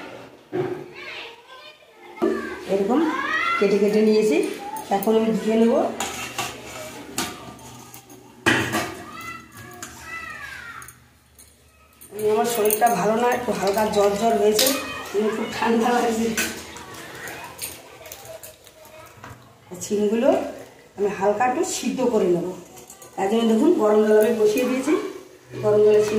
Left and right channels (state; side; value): identical; both; correlation 1.00